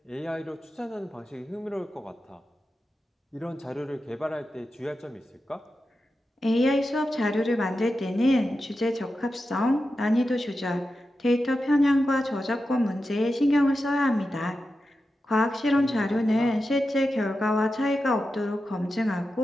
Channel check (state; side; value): normal; both; correlation 0.91